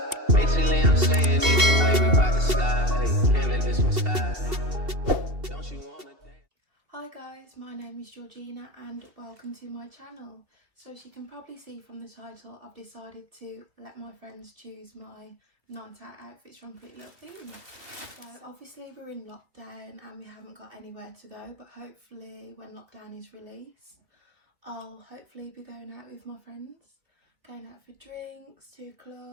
Basically, I'm saying either way, we bout to slide. Hey, can't let this one slide. Don't you wanna dance? Hi guys, my name is Georgina and welcome to my channel. So as you can probably see from the title, I've decided to let my friends choose my night out outfits from Pretty Little Thing. So obviously we're in lockdown and we haven't got anywhere to go, but hopefully when lockdown is released, I'll hopefully be going out with my friends, going out for drinks, to a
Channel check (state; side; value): late; left; 2.7 ms